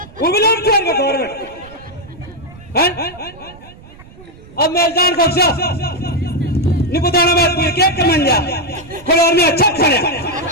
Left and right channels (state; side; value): noise; right; rumble, 21 dB below the sound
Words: वो भी लोग खेल गवर्नमेंट है। अब मैं जान को नहीं बताना बात पूरी केक के मन जा कोई और में अच्छा खाने